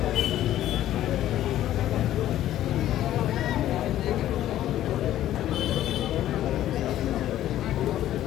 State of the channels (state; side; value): quieter; right; 12.9 dB